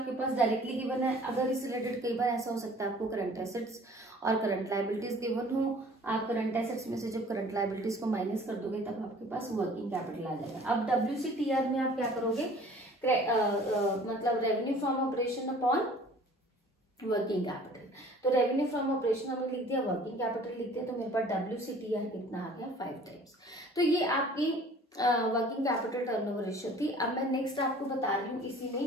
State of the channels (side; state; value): both; normal; correlation 0.50